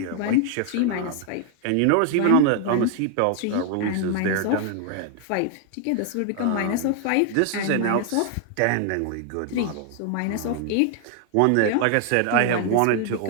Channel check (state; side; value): different; both; correlation 0.00